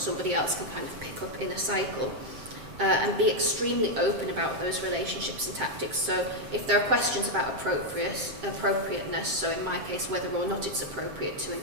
else can kind of pick up in a cycle. And be extremely open about those relationships and tactics. So if there are questions about appropriateness, so in my case whether or not it's appropriate to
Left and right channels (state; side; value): late; left; 7.5 ms